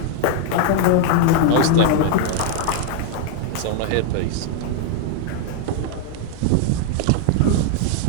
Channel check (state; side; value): different; both; correlation 0.00